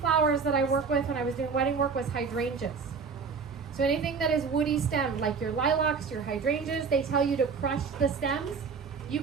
that I work with when I was doing wedding work was hydrangeas. So anything that is woody stemmed, like your lilacs, your hydrangeas, they tell you to crush the stems. You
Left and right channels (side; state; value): left; quieter; 5.4 dB